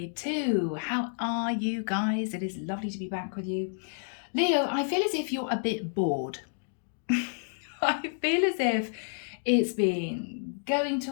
How are you guys? It is lovely to be back with you. Leo, I feel as if you're a bit bored. I feel as if it's been going to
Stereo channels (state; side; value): silent; right; digital silence